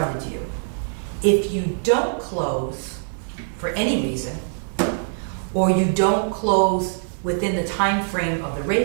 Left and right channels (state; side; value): silent; left; 63 dB below the other